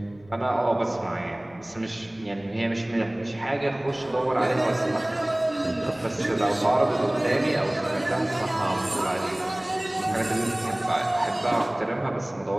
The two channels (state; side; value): noise; left; rumble, 27 dB below the sound